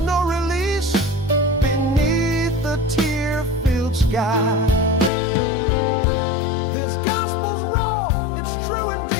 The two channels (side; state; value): right; drops out; at 5.1 s